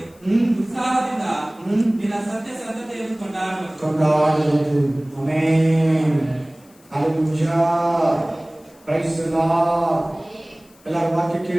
ಉತ್ಸಾಹದಿಂದ ನಿನ್ನ ಸತ್ಯ ಸಂತತೆಯನ್ನು ಕೊಂಡಾಡುವುದು. Amen. Hallelujah. Praise the lord. ಎಲ್ಲರೂ ವಾಕ್ಯ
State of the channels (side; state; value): left; noise; hiss, 29 dB below the sound